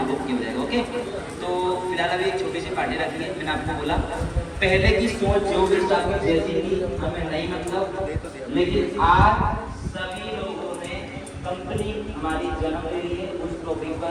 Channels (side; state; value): both; identical; correlation 1.00